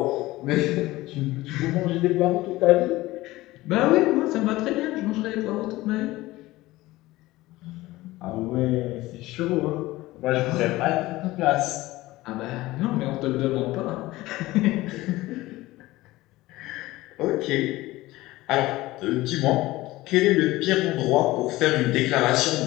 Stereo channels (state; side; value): quieter; right; 18.3 dB